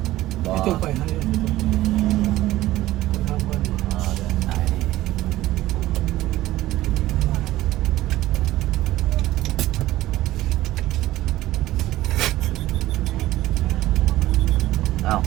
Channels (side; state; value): left; quieter; 15.9 dB